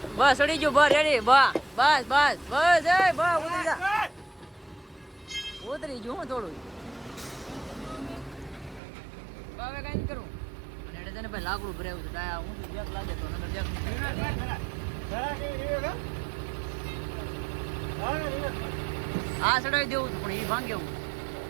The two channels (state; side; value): drops out; left; at 8.8 s